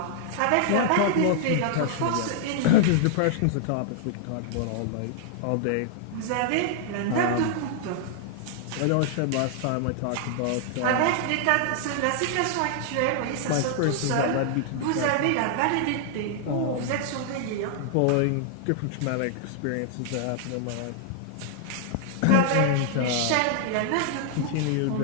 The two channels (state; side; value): different; both; correlation -0.01